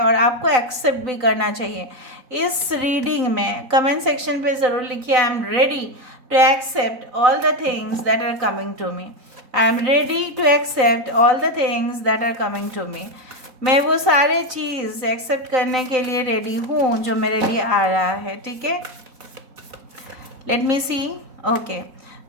आपको एक्सेप्ट भी करना चाहिए। इस रीडिंग में कमेंट सेक्शन पे ज़रूर लिखिए, I am ready to accept all the things that are coming to me, I am ready to accept all the things that are coming to me. मैं वो सारे चीज़ एक्सेप्ट करने के लिए रेडी हूँ जो मेरे लिए आ रहा है, ठीक है। Let me see, okay,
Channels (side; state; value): left; late; 3.9 ms